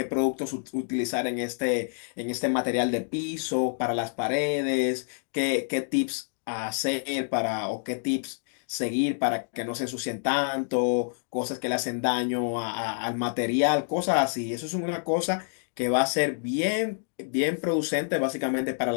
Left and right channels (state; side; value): silent; right; digital silence